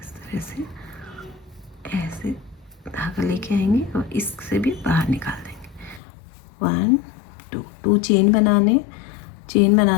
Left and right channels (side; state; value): right; drops out; at 6.0 s